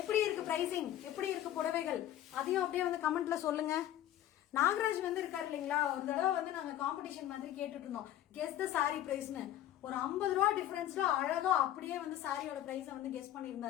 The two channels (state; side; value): quieter; right; 12.4 dB